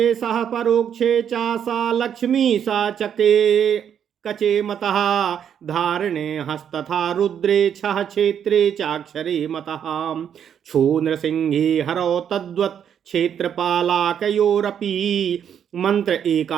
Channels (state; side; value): quieter; left; 8.6 dB